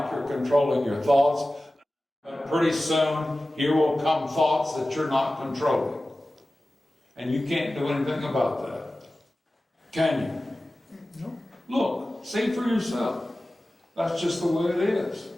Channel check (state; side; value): normal; both; correlation 0.96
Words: you're controlling your thoughts. But pretty soon, here will come thoughts that you're not controlling. And you can't do anything about that. Can you? No. Look, see for yourself. That's just the way it is.